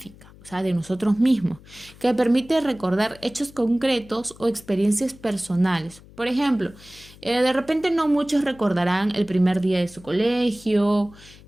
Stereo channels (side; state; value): left; noise; hum, 22 dB below the sound